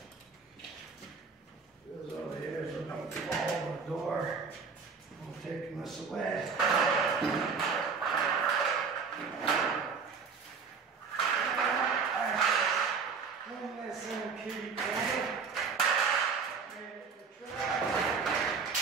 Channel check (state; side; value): quieter; left; 5.5 dB